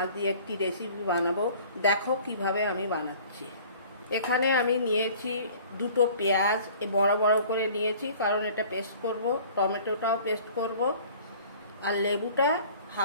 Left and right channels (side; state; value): both; inverted; correlation -0.49